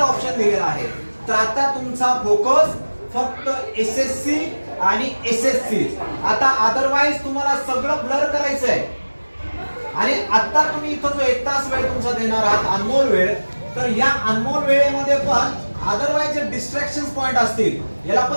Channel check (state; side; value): inverted; both; correlation -1.00